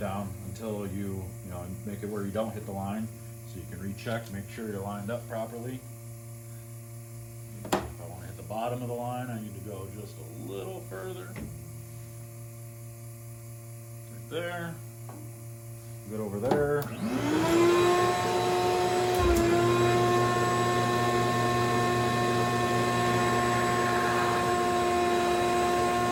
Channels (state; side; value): identical; both; correlation 1.00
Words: until you know, make it where you don't hit the line, so you can recheck, make sure you're lined up properly. If I want to hit the bottom of the line, I need to go just a little further. Right there. Good over there.